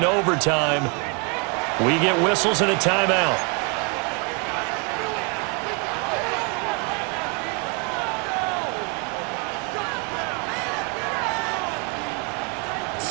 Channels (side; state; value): left; quieter; 34.0 dB